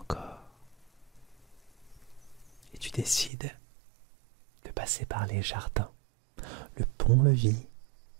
Et tu décides de passer par les jardins. Le pont-levis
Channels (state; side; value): drops out; left; at 3.3 s